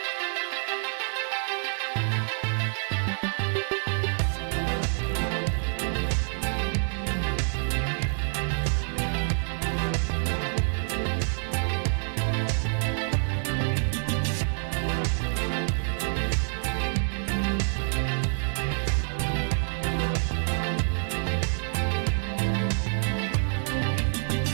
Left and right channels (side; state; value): left; silent; 60 dB below the other